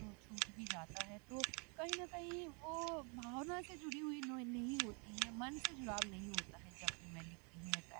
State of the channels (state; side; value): quieter; left; 34.6 dB